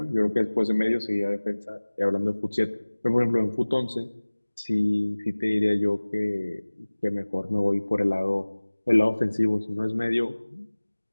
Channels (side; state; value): both; inverted; correlation -1.00